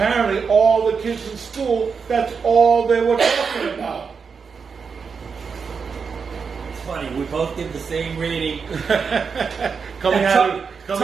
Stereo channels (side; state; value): left; quieter; 5.7 dB